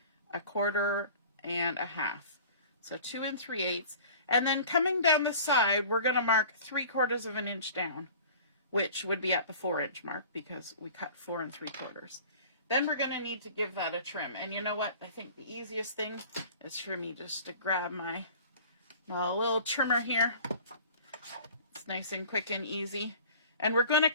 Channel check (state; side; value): inverted; both; correlation -0.44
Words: 1/4 and 1/2. So 2 3/8, and then coming down the side, we're going to mark 3/4 of an inch down, which would be at the 4-inch mark because we cut 4 3/4. Then we're going to need to give that a trim, and you know what? I think the easiest thing is for me just to grab my little trimmer here. It's nice and quick and easy. And we're going to